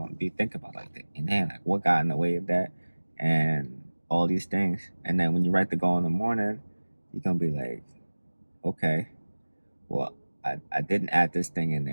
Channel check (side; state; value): both; inverted; correlation -1.00